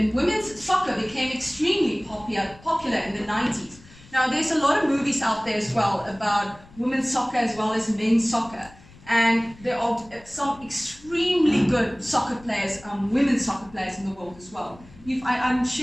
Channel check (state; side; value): noise; left; rumble, 23 dB below the sound